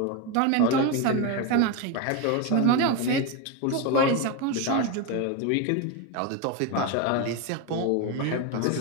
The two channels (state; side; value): different; both; correlation 0.03